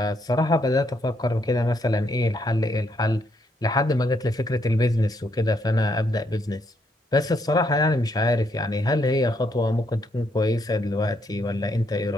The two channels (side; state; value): both; normal; correlation 0.74